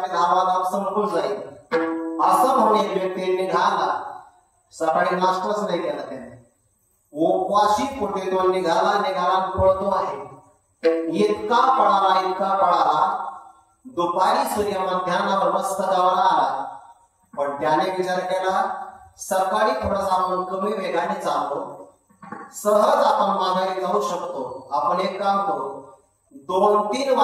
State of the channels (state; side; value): identical; both; correlation 1.00